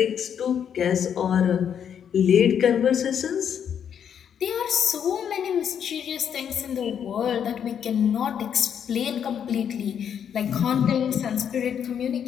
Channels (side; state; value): right; quieter; 8.4 dB